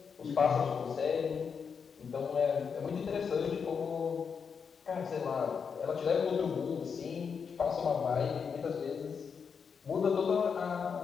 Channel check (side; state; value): right; quieter; 6.2 dB